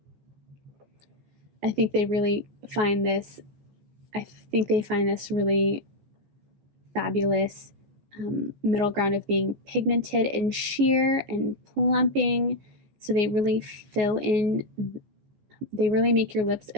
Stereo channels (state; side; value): late; left; 14 ms